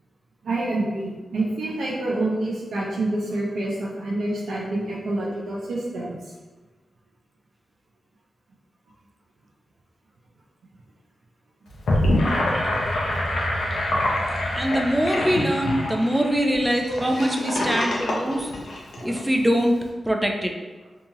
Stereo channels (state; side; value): normal; both; correlation 0.91